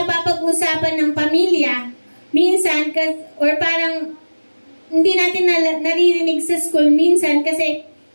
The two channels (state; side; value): inverted; both; correlation -1.00